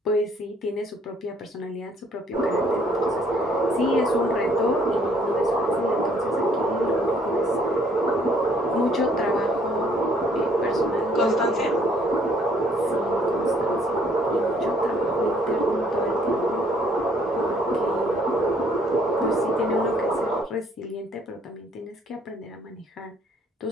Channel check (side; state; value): both; normal; correlation 0.63